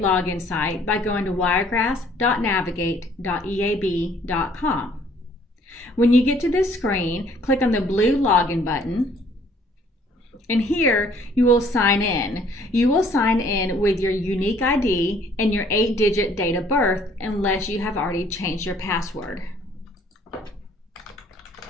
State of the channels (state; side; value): normal; both; correlation 0.60